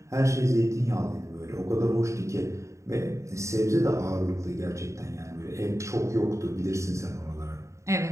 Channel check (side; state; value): left; late; 0.14 ms